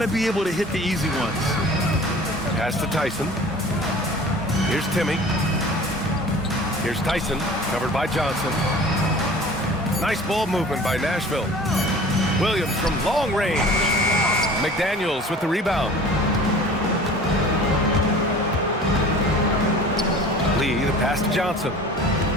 be able to hit the easy ones. Pass to Tyson. Here's Timmy. Here's Tyson, covered by Johnson. Nice ball movement by Nashville. Williams from long range. McDaniels with the rebound. Lee, the pass to Johnson.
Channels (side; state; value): both; normal; correlation 0.43